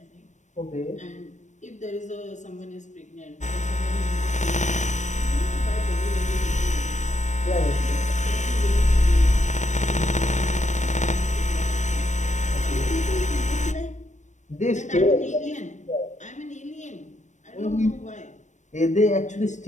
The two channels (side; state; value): right; late; 0.35 ms